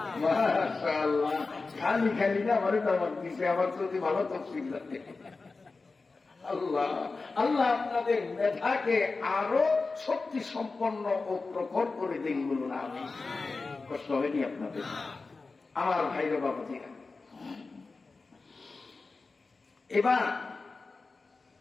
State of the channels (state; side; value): quieter; right; 3.9 dB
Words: মাশাআল্লাহ। খালি খালি না, আমারও দামাক দিছে, আমার যদি ভালো তফসিল লাগে। আল্লাহ আল্লাহ আপনাদের মেধাকে আরো শক্তি সম্পন্ন ও প্রখর করে দিন, বলুন আমিন। কষ্ট হয়নি আপনাদের? আমার ভাইরা বাবাজিরা, এবার